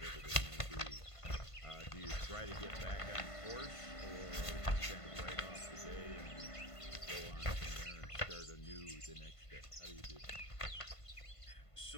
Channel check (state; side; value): late; right; 1.5 ms